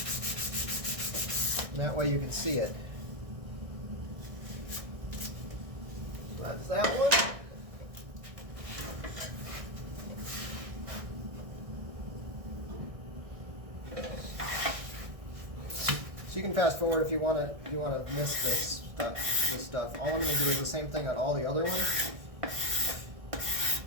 And that way you can see it. So that's that one. So you can fast forward if you want to miss this stuff. All I'm going to do is the same thing on all the other ones.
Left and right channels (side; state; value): left; late; 1.6 ms